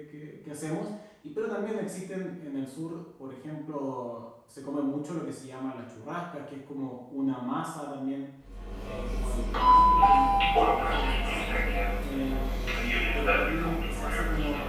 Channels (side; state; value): both; identical; correlation 1.00